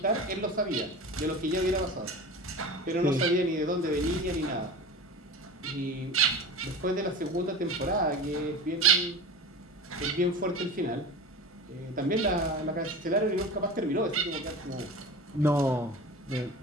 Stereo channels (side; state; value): both; normal; correlation 0.32